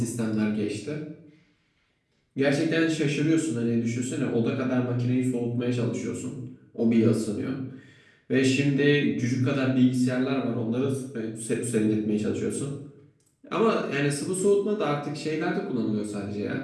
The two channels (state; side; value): identical; both; correlation 1.00